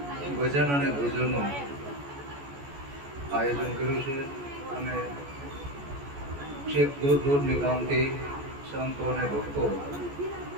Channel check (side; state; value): left; late; 14 ms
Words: ભજન અને ભોજનનું આયોજન કર્યું છે અને છેક દૂર દૂરની ગામથી સંતો અને ભક્તો